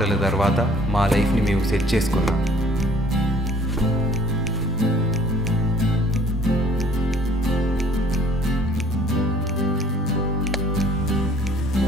తర్వాత మా లైఫ్ని మేము సెట్ చేసుకున్నాం.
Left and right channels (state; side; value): normal; both; correlation 0.56